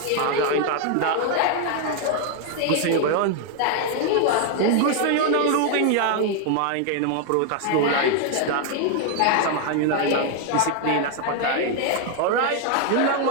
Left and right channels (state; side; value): different; both; correlation 0.00